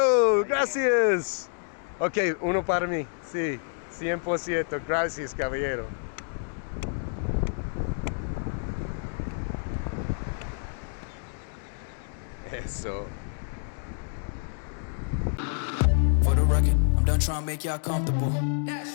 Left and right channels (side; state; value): right; silent; 59 dB below the other